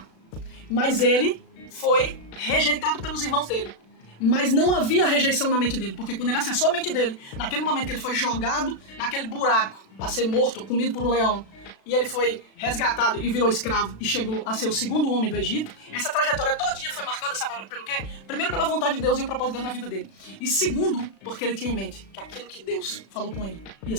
Mas ele foi rejeitado pelos irmãos dele. Mas não havia rejeição na mente dele, porque quando ele acessou a mente dele, naquele momento que ele foi jogado naquele buraco para ser morto, comido por um leão, e ele foi resgatado e virou escravo e chegou a ser o segundo homem do Egito, essa trajetória todinha foi marcada, sabe pelo quê? Primeiro, pela vontade de Deus e o propósito de Deus na vida dele. E segundo, porque ele tinha em mente que aquilo que Deus falou com ele ia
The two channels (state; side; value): late; right; 36 ms